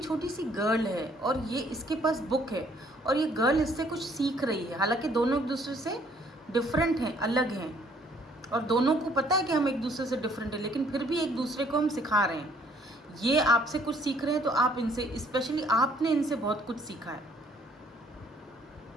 सी गर्ल है, और ये इसके पास बुक है, और ये गर्ल इससे कुछ सीख रही है। हालांकि दोनों एक दूसरे से डिफरेंट हैं, अलग हैं, और दोनों को पता है कि हम एक दूसरे से डिफरेंट हैं, लेकिन फिर भी एक दूसरे को हम सिखा रहे हैं। ये आपसे कुछ सीख रहे हैं, तो आप इनसे, स्पेशली आपने इनसे बहुत कुछ सीखा है।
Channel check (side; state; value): both; normal; correlation 0.62